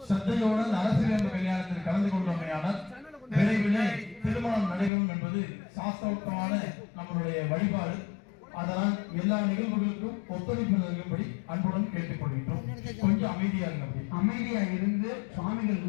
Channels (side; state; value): right; drops out; at 4.9 s